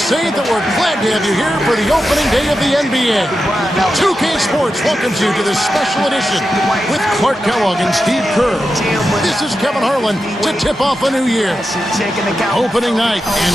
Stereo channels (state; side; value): normal; both; correlation 0.90